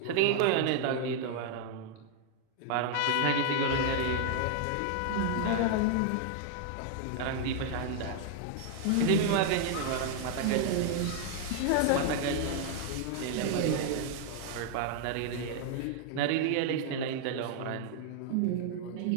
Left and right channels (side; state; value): both; different; correlation 0.00